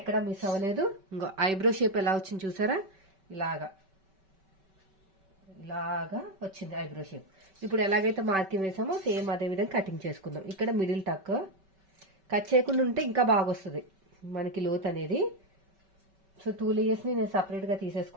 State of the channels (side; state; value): left; late; 5.2 ms